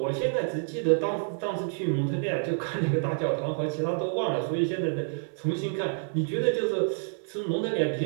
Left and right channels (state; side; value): silent; left; 59 dB below the other